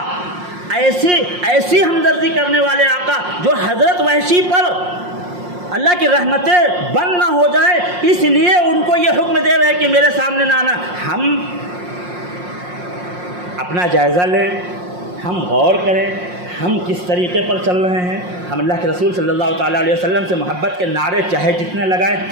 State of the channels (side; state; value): left; late; 5.6 ms